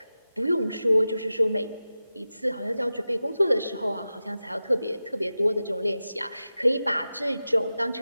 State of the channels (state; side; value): inverted; both; correlation -0.94